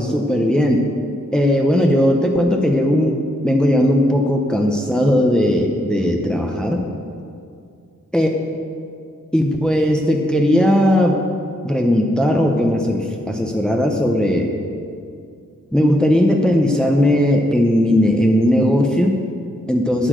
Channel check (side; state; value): both; normal; correlation 0.79